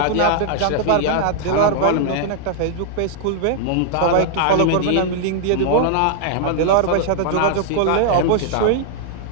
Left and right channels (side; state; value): both; different; correlation -0.01